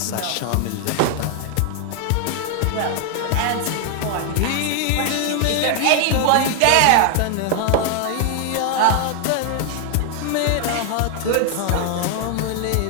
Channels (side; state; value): both; different; correlation 0.00